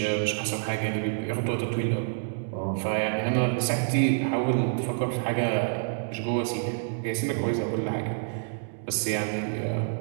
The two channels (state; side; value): silent; left; digital silence